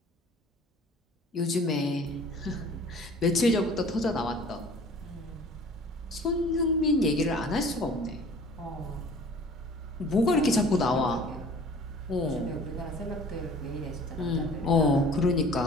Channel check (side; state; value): both; normal; correlation 0.48